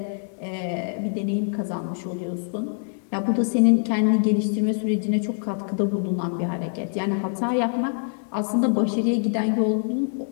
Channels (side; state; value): right; silent; 62 dB below the other